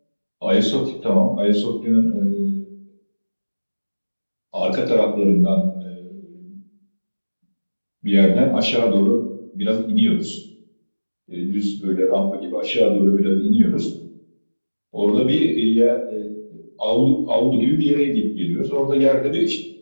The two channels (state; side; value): inverted; both; correlation -1.00